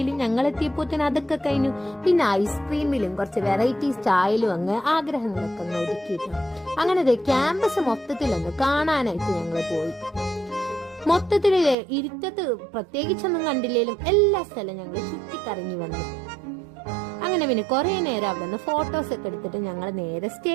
ഞങ്ങൾ എത്തിയപ്പോഴത്തേന് അതൊക്കെ കഴിഞ്ഞു. പിന്നെ ഐസ്ക്രീമിലും കുറച്ച് വെറൈറ്റി സ്റ്റൈലും അങ്ങ് ആഗ്രഹങ്ങളൊക്കെ ഒന്ന് ഒതുക്കിയിട്ടു. അങ്ങനെ ക്യാമ്പസ് മൊത്തത്തിലൊന്ന് കാണാനായിട്ട് ഞങ്ങൾ പോയി. മൊത്തത്തില് ഇരുട്ടത്ത് പ്രത്യേകിച്ചൊന്നും കണ്ടില്ലേലും എല്ലാ സ്ഥലവും ഞങ്ങൾ ചുറ്റിക്കറങ്ങി വന്നു. അങ്ങനെ പിന്നെ കുറെ നേരം അവിടെ നിന്ന് ഫോട്ടോസ് ഒക്കെ എടുത്തിട്ട് ഞങ്ങൾ നേരെ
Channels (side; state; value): left; drops out; at 11.8 s